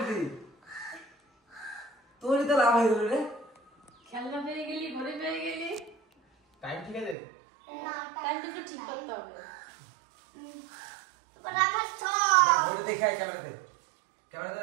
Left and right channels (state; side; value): drops out; left; at 7.2 s